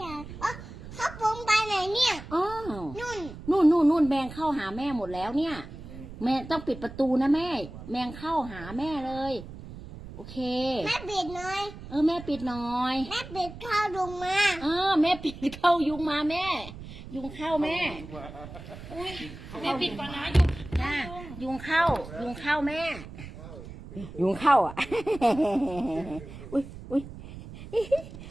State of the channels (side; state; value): right; noise; rumble, 14 dB below the sound